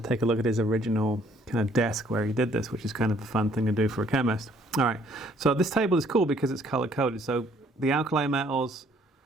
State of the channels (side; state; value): both; normal; correlation 0.62